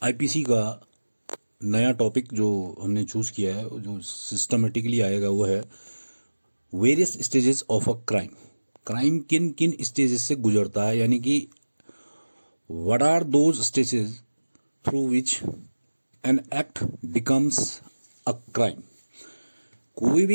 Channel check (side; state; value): both; inverted; correlation -1.00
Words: आईपीसी का नया टॉपिक जो हमने चूज किया है, जो सिस्टमेटिकली आएगा, वो है various stages of a crime. Crime किन किन स्टेजेस से गुजरता है, यानी कि what are those stages through which an act becomes a crime. कोई